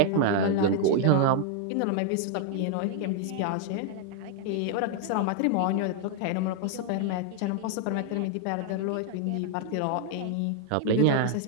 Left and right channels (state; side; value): different; both; correlation 0.00